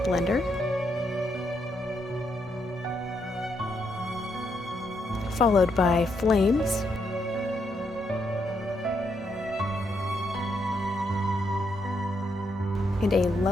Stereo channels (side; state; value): both; normal; correlation 0.78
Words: blender, followed by flames, and a